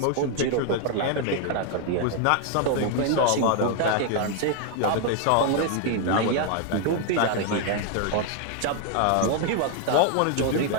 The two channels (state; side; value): different; both; correlation 0.00